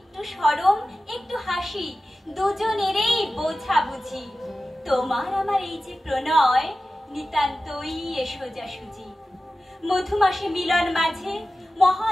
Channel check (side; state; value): both; normal; correlation 0.94